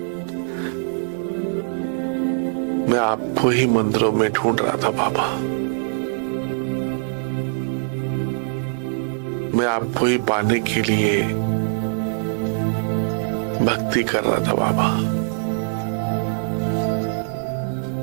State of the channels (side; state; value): left; silent; digital silence